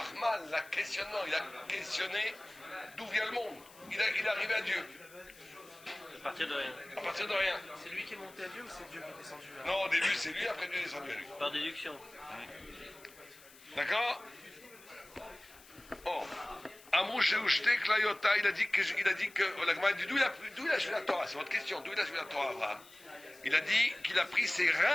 la questionnement, il a questionné d'où vient le monde. Il est arrivé à Dieu. À partir de rien. À partir de rien. C'est lui qui est monté à Dieu ou c'est Dieu qui est descendu à lui? Non, au début c'est lui, après Dieu est descendu à lui. Par déduction. D'accord? Oh. Amrou Sheushte Klayota, il a dit que la Gemara dit d'où il a joué la Torah? C'est votre question. D'où il a joué la Torah, Abraham? Il a dit qu'il a pris ses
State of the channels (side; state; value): left; noise; hiss, 22 dB below the sound